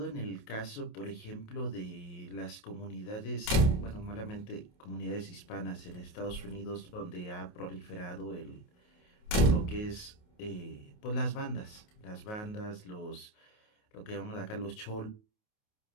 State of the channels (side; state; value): right; late; 28 ms